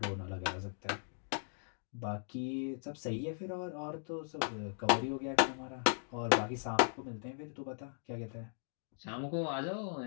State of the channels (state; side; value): silent; right; digital silence